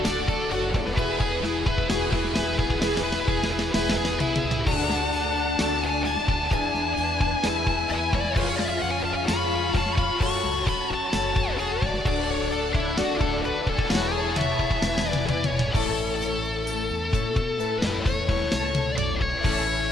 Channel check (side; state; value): both; normal; correlation 0.75